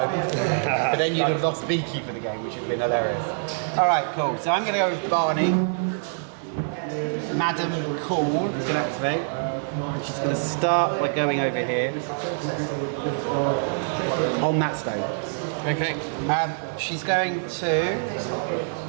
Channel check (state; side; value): silent; left; 57 dB below the other